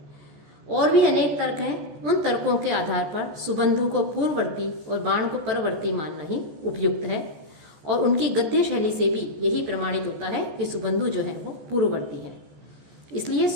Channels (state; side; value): late; left; 14 ms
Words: और भी अनेक तर्क हैं, उन तर्कों के आधार पर सुबंधु को पूर्ववर्ती और बाण को परवर्ती मानना ही उपयुक्त है और उनकी गद्य शैली से भी यही प्रमाणित होता है कि सुबंधु जो है वो पूर्ववर्ती है। इसलिए